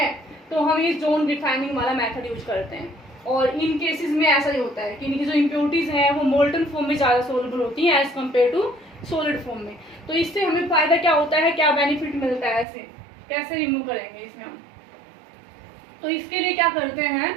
तो हम ये जोन रिफाइनिंग वाला मेथड यूज करते हैं, और इन केसेस में ऐसा ही होता है कि इनकी जो इम्प्योरिटीज हैं वो मोल्टन फॉर्म में ज्यादा सोल्यूबल होती हैं as compare to solid form में। तो इससे हमें फायदा क्या होता है, क्या बेनिफिट मिलता है, ऐसे कैसे रिमूव करेंगे इसमें हम। तो इसके लिए क्या करते हैं,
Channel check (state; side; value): drops out; left; at 12.7 s